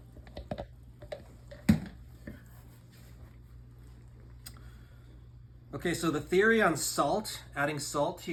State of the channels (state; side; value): identical; both; correlation 1.00